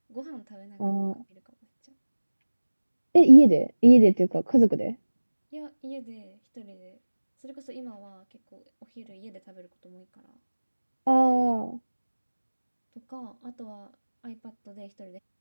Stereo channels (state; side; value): inverted; both; correlation -1.00